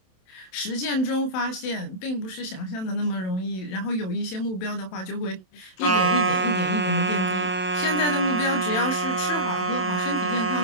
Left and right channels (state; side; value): late; right; 27 ms